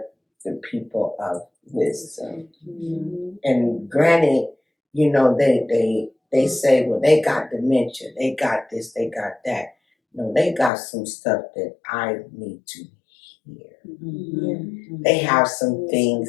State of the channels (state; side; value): drops out; right; at 10.7 s